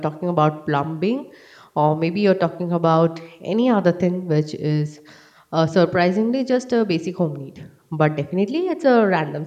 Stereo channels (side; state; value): both; identical; correlation 1.00